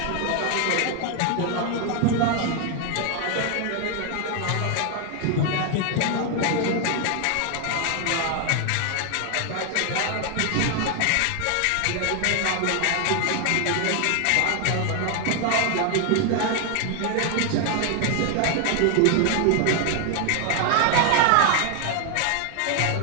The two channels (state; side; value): different; both; correlation 0.01